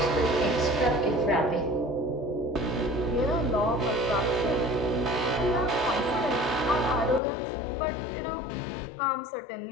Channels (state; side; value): drops out; right; at 7.2 s